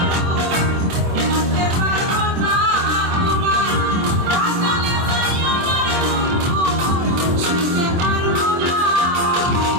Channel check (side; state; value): left; late; 24 ms